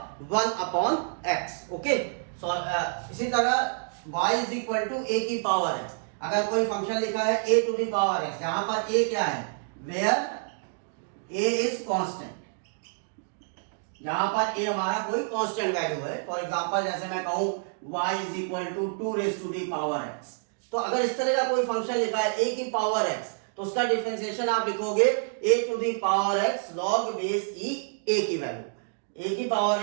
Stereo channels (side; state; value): left; silent; digital silence